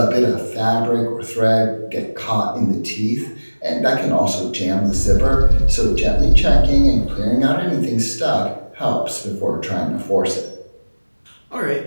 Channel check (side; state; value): both; inverted; correlation -1.00